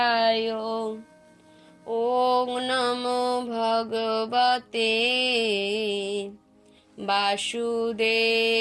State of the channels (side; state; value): both; identical; correlation 1.00